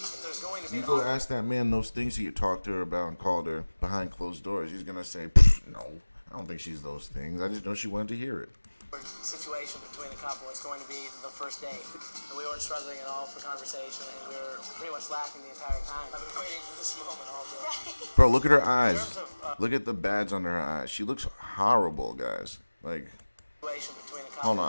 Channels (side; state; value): both; inverted; correlation -1.00